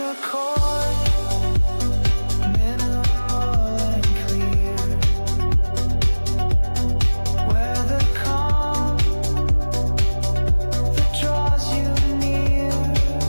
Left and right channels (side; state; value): both; inverted; correlation -1.00